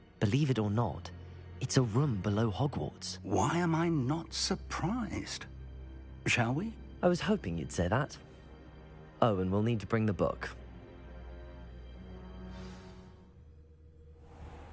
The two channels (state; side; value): identical; both; correlation 1.00